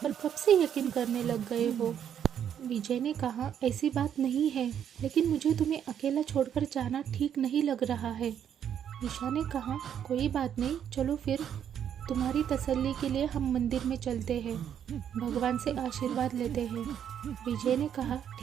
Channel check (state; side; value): quieter; left; 9.1 dB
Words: कब से यकीन करने लग गए हो? विजय ने कहा, ऐसी बात नहीं है, लेकिन मुझे तुम्हें अकेला छोड़कर जाना ठीक नहीं लग रहा है। ईशा ने कहा, कोई बात नहीं, चलो फिर तुम्हारी तसल्ली के लिए हम मंदिर में चलते हैं, भगवान से आशीर्वाद लेते हैं। विजय ने कहा,